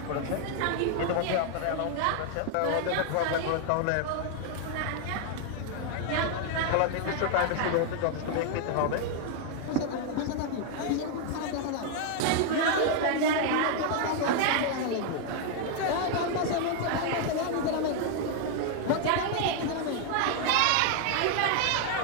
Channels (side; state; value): both; different; correlation 0.00